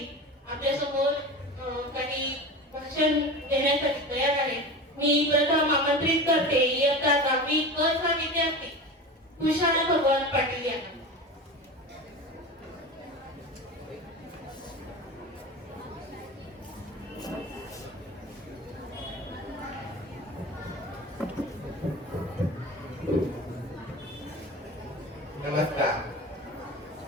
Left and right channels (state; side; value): normal; both; correlation 0.30